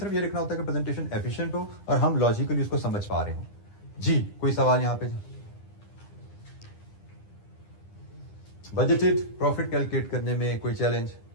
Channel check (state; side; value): late; right; 9.9 ms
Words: ये लिखना होता है कि प्रेजेंटेशन एफिशिएंट हो और हम लॉजिकली उसको समझ पा रहे हो। जी, कोई सवाल यहां पे? बजटेड प्रॉफिट कैलकुलेट करने में कोई चैलेंज?